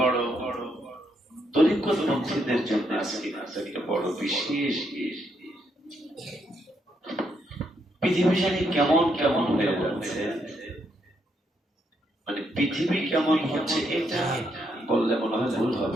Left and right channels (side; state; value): both; normal; correlation 0.76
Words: তরিকতপন্থীদের জন্য আজকে একটা বড় বিশেষ পৃথিবী জানি কেমন কেমন হয়ে যাচ্ছে, মানে পৃথিবী কেমন হচ্ছে এটা বললে মনে হয় ভুল